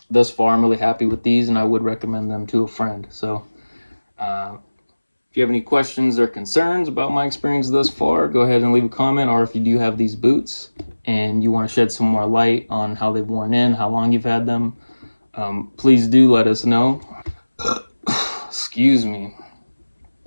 thus far I'm really happy with these, and I would recommend them to a friend. So if you have any questions or concerns about my experience thus far, go ahead and leave a comment. Or if you do have these boots and you want to shed some more light on how they've worn in, how long you've had them, please do let us know. Excuse me.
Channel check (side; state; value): both; inverted; correlation -1.00